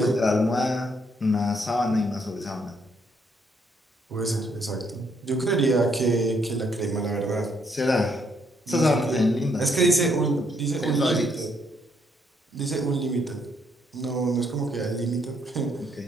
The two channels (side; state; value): both; normal; correlation 0.72